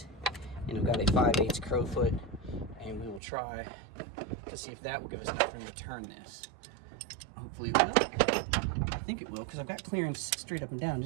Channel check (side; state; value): left; drops out; at 3.2 s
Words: and I've got a 5/8 crowfoot, and we will try to see if that will give us enough room to turn this. Hopefully it will. I think it will, because I've got clearance straight up and down. I